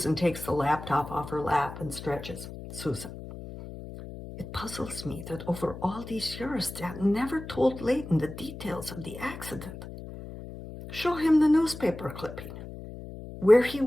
takes the laptop off her lap and stretches. Susan, it puzzles me that over all these years, Dad never told Leighton the details of the accident. Show him the newspaper clipping, where he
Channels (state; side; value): noise; left; hum, 12 dB below the sound